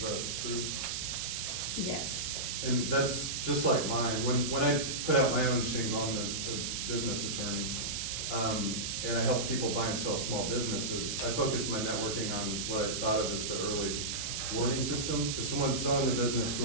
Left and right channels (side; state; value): right; noise; hiss, 2 dB below the sound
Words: that true? Yes. And that's just like mine. When I put out my own shingle, I'm a business attorney, and I help people buy and sell small businesses. I focus my networking on what I thought of as the early warning system. If someone's selling their business,